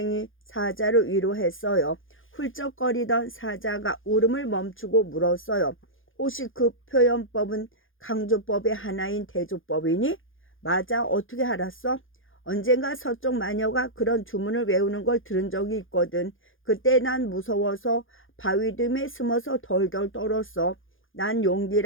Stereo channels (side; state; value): right; late; 0.58 ms